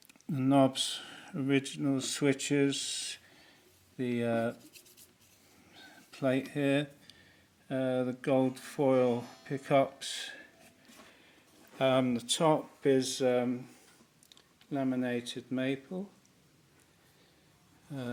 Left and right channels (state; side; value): identical; both; correlation 1.00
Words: knobs, original switches, the plate here, the gold foil pickups. The top is laminated maple,